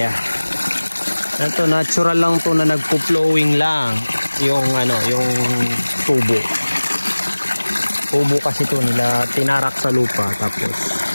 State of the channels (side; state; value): both; inverted; correlation -1.00